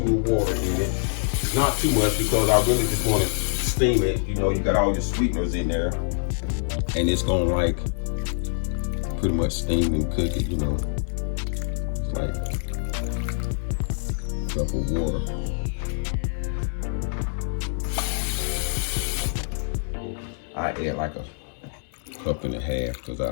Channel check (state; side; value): silent; right; 62 dB below the other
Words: of water in it. Not too much because I really just want to steam it. You know, you got all your sweeteners in there. And it's gonna like pretty much steam and cook it, you know. It's like a cup of water. I add like a cup and a half because